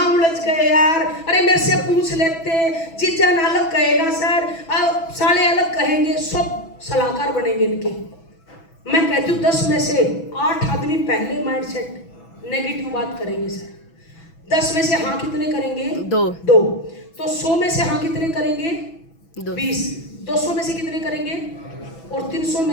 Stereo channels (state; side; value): late; right; 6.1 ms